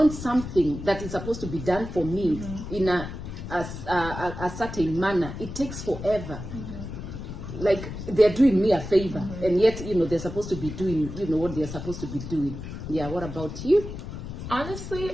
something that is supposed to be done for me in a certain manner, it takes forever. Like they're doing me a favor, and yet, you know, they're supposed to be doing, you know, what they're supposed to be doing. Yeah, what about you?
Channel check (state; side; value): noise; left; rumble, 9 dB below the sound